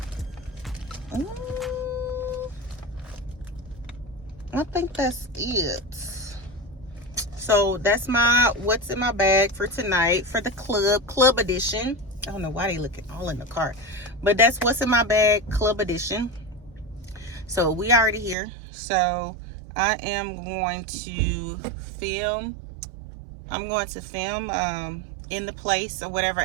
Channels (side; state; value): left; drops out; at 18.4 s